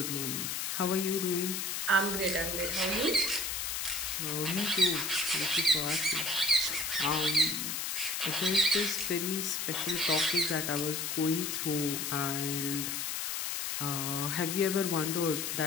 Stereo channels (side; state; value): left; noise; hiss, 2 dB below the sound